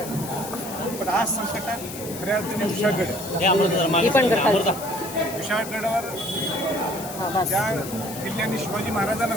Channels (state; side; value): noise; left; hiss, 11 dB below the sound